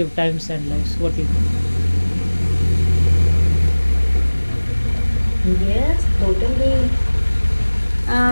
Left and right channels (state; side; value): inverted; both; correlation -1.00